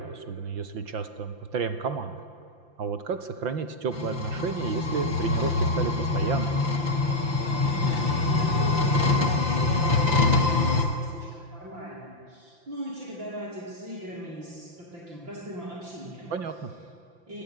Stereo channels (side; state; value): left; late; 5.8 ms